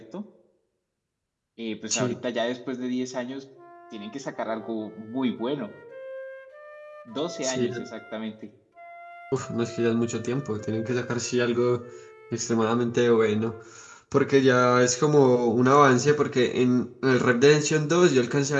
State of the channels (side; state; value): both; identical; correlation 1.00